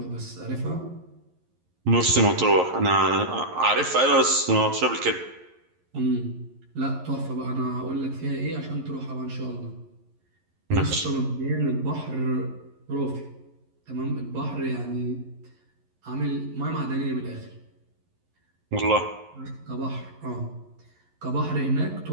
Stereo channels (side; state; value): left; late; 11 ms